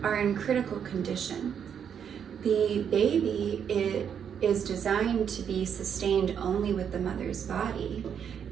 are in critical condition. The baby is designed to be sustained only with the mother's body.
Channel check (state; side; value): quieter; left; 8.0 dB